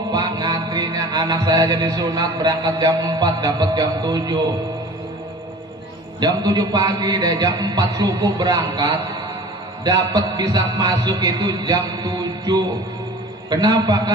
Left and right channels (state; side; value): normal; both; correlation 0.42